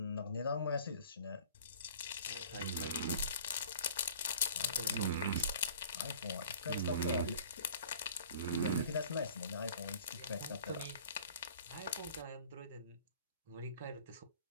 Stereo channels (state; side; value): inverted; both; correlation -0.48